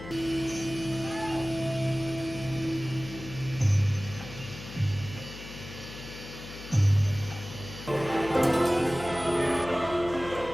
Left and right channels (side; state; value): left; noise; hum, 13 dB below the sound